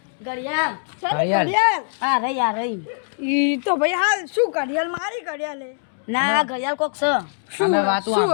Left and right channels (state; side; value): silent; right; digital silence